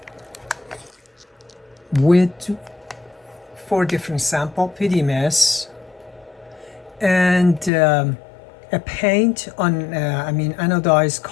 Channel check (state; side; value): drops out; right; at 7.7 s